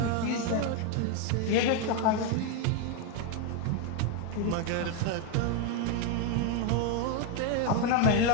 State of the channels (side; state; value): both; different; correlation 0.01